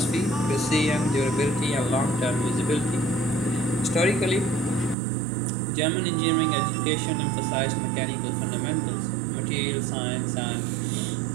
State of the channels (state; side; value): drops out; left; at 5.0 s